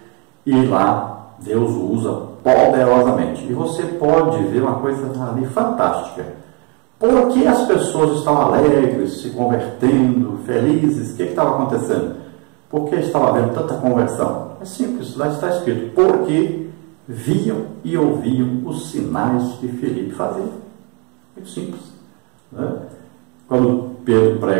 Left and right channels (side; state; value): left; quieter; 33.5 dB